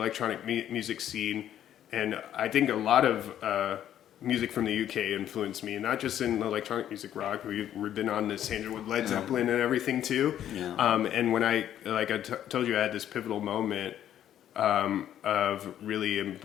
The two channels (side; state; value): right; quieter; 10.9 dB